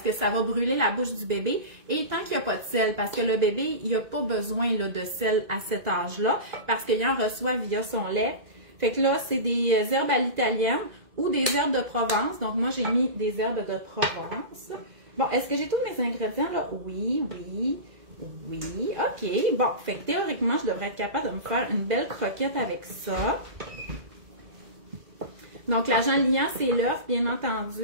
ça va brûler la bouche du bébé, et tant qu'il n'y a pas de sel, parce que le bébé, il n'a pas besoin là, de sel à cet âge-là, parce qu'il en reçoit via son lait. Fait que là, c'est des herbes à l'italienne ou des herbes de Provence. Donc, moi, j'ai mis des herbes de Provence. Bon, est-ce que j'ai tous mes ingrédients là? Oui. OK. Bon, fait que théoriquement, je devrais être capable de me faire une belle croquette avec ça. Donc, l'agent liant, c'est l'œuf, bien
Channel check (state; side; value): late; left; 1.9 ms